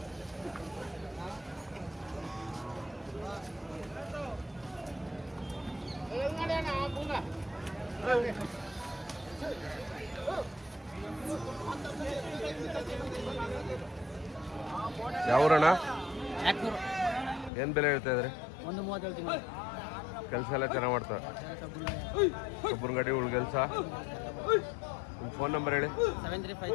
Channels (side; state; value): right; drops out; at 17.5 s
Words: ಯಾವೂರಣ್ಣ? ಏನು ಬೆಲೆ ಹೇಳ್ತಾ ಇದ್ರಿ? 130 ಹೇಳ್ತೀನಿ. ಕೆಲಸ ಎಲ್ಲ ಚೆನ್ನಾಗಿ ಮಾಡ್ತಾರೆ. ಒಬ್ಬರ ಗಾಡಿ ಉಳ್ ಕೆಲಸ. ನಿಮ್ಮ ಫೋನ್ ನಂಬರ್ ಹೇಳಿ.